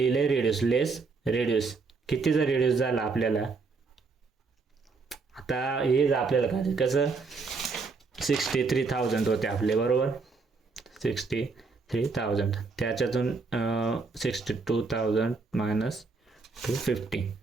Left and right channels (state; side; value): quieter; left; 4.4 dB